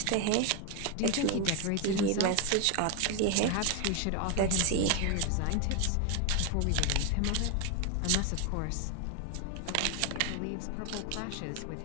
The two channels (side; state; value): both; different; correlation 0.01